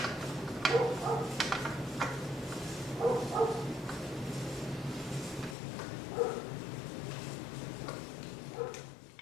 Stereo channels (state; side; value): drops out; right; at 5.6 s